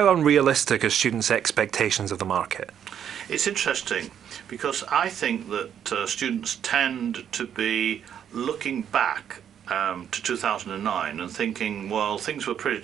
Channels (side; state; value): left; quieter; 9.0 dB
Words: unrealistic are students' expectations of the market? It's interesting because I think that students tend to be looking back to 2009 and thinking, well, things were pretty